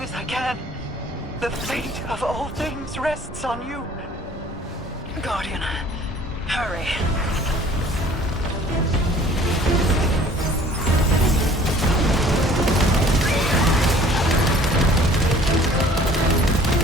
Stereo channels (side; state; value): both; normal; correlation 0.52